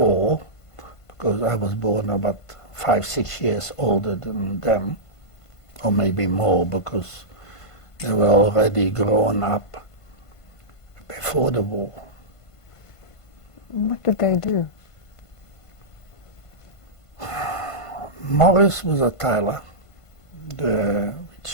because I was born about 5-6 years older than them, or maybe more, because they were already grown up before the war. What did they do? Morris was a tailor,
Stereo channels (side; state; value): right; late; 1.5 ms